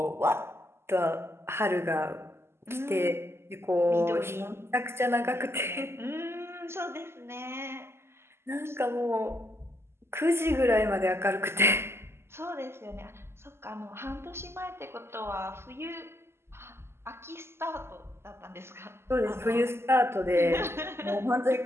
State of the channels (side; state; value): left; late; 0.12 ms